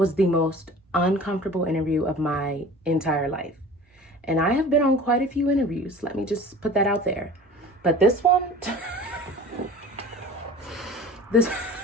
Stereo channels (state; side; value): normal; both; correlation 0.42